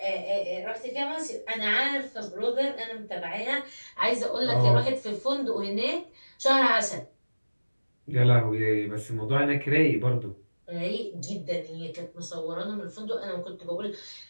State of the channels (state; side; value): inverted; both; correlation -1.00